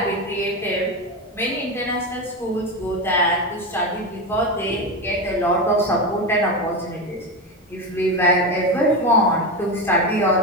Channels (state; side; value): normal; both; correlation 0.17